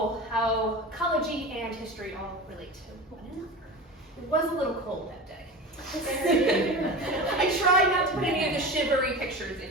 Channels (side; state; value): both; normal; correlation 0.29